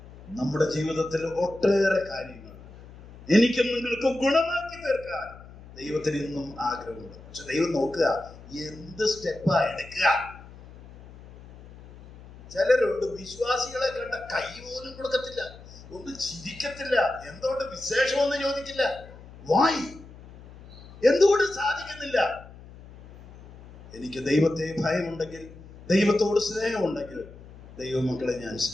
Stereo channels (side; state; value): left; noise; hum, 19 dB below the sound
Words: നമ്മുടെ ജീവിതത്തിൽ ഒട്ടേറെ കാര്യങ്ങൾ എനിക്കും നിങ്ങൾക്കും ഗുണമാക്കി തീർക്കാൻ ദൈവത്തിന് ഇന്നും ആഗ്രഹമുണ്ട്. പക്ഷെ ദൈവം നോക്കുക എന്ത് സ്റ്റെപ്പാ എടുക്കുക. ചിലരുണ്ട് വിശ്വാസികളെ കണ്ട കൈ പോലും കൊടുക്കത്തില്ല, ഒന്നും ചിരിക്കത്തില്ല, എന്തുകൊണ്ട് വിശേഷമൊന്നും ചോദിക്കില്ല. വായി എന്തുകൊണ്ട് സാധിക്കുന്നില്ല? എനിക്ക് ദൈവത്തെ ഭയമുണ്ടെങ്കിൽ, ദൈവത്തോട് സ്നേഹമുണ്ടെങ്കിൽ ദൈവമക്കളെ ഞാൻ